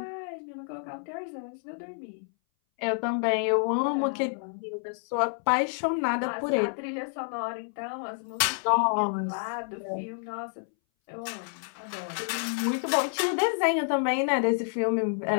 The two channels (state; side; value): silent; right; 59 dB below the other